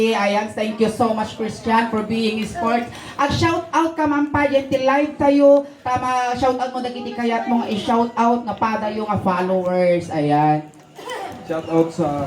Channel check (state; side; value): identical; both; correlation 1.00